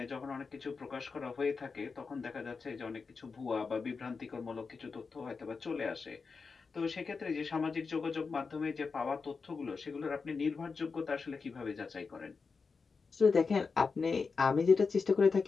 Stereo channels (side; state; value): right; quieter; 4.9 dB